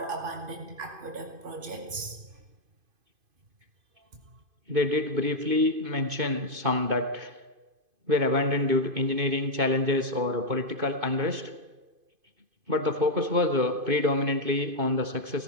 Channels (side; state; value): left; late; 2.5 ms